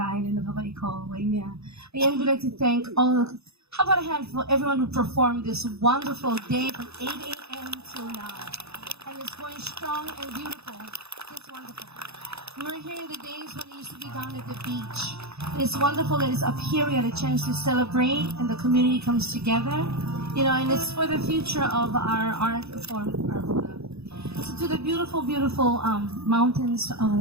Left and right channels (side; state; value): left; late; 0.79 ms